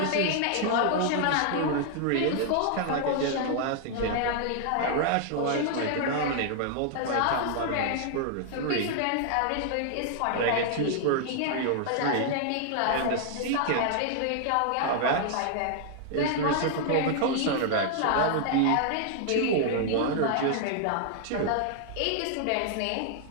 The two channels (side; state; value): both; different; correlation 0.00